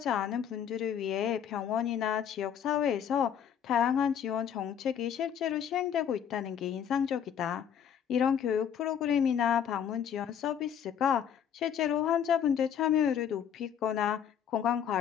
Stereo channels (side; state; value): right; quieter; 8.6 dB